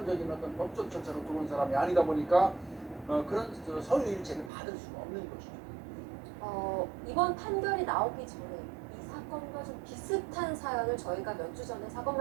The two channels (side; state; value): left; drops out; at 4.5 s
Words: 어떤 법적 절차로 들어온 사람이 아니다 보니까 그런 서류 일체를 받을 수가 없는 것이죠. 이번 판결이 나오기 전에 이 사건과 좀 비슷한 사연을 저희가 몇 주 전에